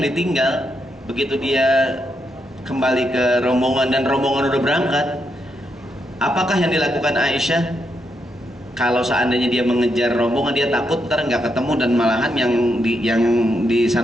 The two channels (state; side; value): normal; both; correlation 0.81